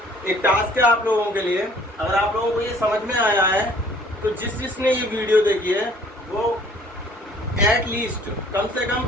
एक टास्क है आप लोगों के लिए, अगर आप लोगों को ये समझ में आया है तो जिसने ये वीडियो देखी है वो एटलीस्ट कम से कम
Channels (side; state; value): both; normal; correlation 0.56